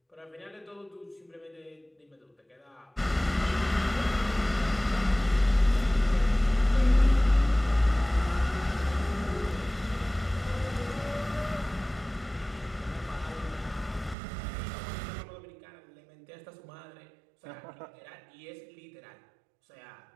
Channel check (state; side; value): drops out; left; at 14.2 s